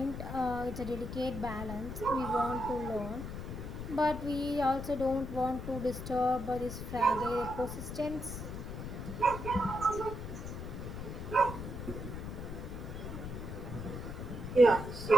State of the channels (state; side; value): noise; left; rumble, 7 dB below the sound